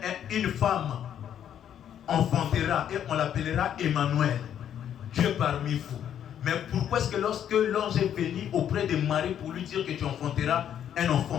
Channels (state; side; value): quieter; right; 9.7 dB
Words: une femme enfantera et on l'appellera Emmanuel, Dieu parmi vous. Mais pourquoi est-ce que lorsque l'ange est venu auprès de Marie pour lui dire que tu enfanteras un